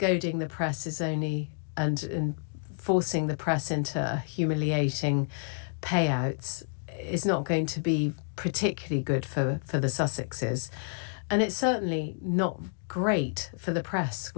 the press is only, and forcing the press into humiliating payouts is not going to be particularly good for the Sussexes. And it's certainly not great for the press,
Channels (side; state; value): right; silent; digital silence